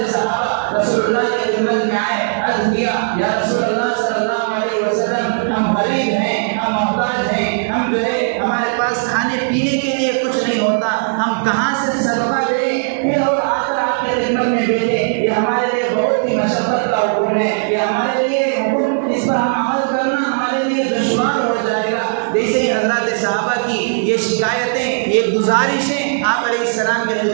صحابہ رسول اللہ کی خدمت میں آئے، عرض کیا، یا رسول اللہ صلی اللہ علیہ وسلم، ہم غریب ہیں، ہم محتاج ہیں، ہم جو ہے ہمارے پاس کھانے پینے کے لیے کچھ نہیں ہوتا، ہم کہاں سے صدقہ دیں؟ پھر اور آ کر آپ کی خدمت میں بیٹھے، یہ ہمارے لیے بہت ہی مشقت کا حکم ہے، یہ ہمارے لیے حکم، اس پر ہم عمل کرنا ہمارے لیے دشوار ہو جائے گا۔ جیسے ہی حضرات صحابہ کی یہ شکایتیں، یہ گزارشیں آپ علیہ السلام کی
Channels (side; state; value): left; silent; digital silence